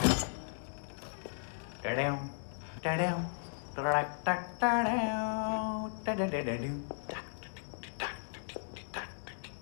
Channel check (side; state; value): right; silent; digital silence